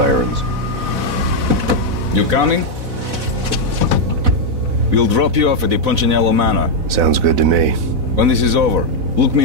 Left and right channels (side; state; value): left; late; 4.0 ms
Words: You coming? We'll drop you off at the Punchinello Manor. Sounds good to me. When this is over, look